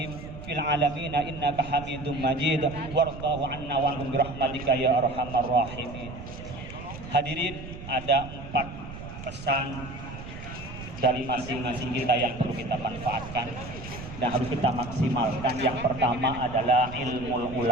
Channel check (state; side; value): noise; right; rumble, 12 dB below the sound